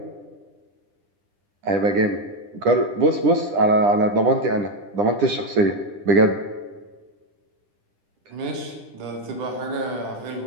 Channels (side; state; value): left; late; 10 ms